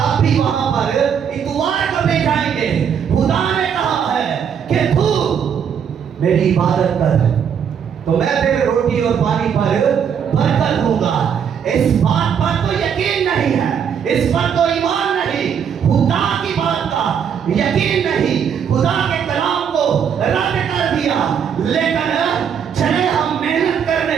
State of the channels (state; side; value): quieter; left; 7.7 dB